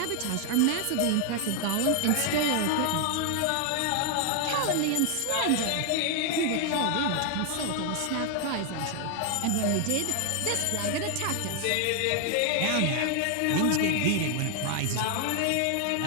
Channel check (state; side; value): different; both; correlation 0.00